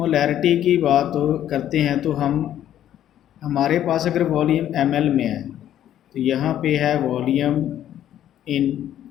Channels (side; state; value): right; quieter; 11.3 dB